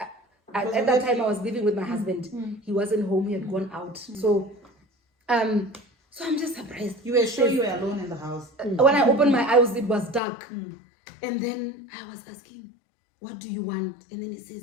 At that time, I was living with my husband. He wasn't home. He had gone out. So I'm just surprised. You were sure you were alone in the house? When I opened my eyes, it was dark. And then I was asking, what do you want? And then he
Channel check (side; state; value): right; drops out; at 10.2 s